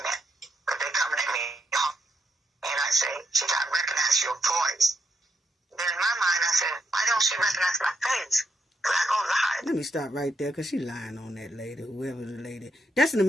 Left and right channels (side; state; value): both; normal; correlation 0.80